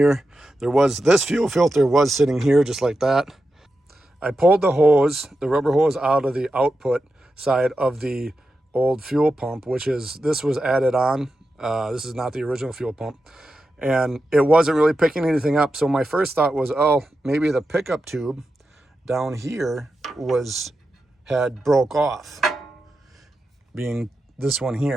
This fuel filter was sitting here just like that. I pulled the rubber hose out of the output side of the old fuel pump, this was added on. This is not the original fuel pump. And it wasn't really picking anything up. So my first thought was, oh, maybe the pickup tube down here had broke off, being this one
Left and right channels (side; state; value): both; normal; correlation 0.89